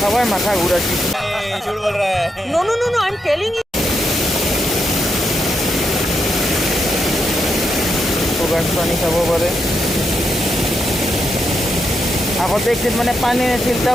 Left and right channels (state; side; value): normal; both; correlation 0.82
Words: हुआ है माथा घूराची। झूठ बोल रहा है। No no no no I am telling you. तो गाइस पानी खाब पारे। আগতে একদিন মানে পানী আছিল, তা